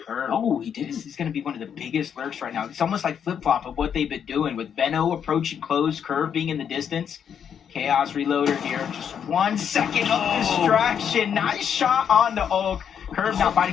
Curve. Oh, he did. This is going to be one of the biggest lurks right now. It's almost like flip-flop of what they've been doing with Venno approaching close, Curve being in the distance. Chaos Reloader here. Just 1 second of distraction. Nice shot on the Oak. Curve not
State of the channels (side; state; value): right; quieter; 8.0 dB